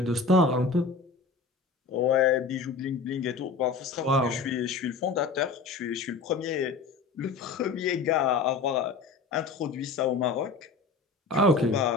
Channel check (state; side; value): quieter; right; 4.3 dB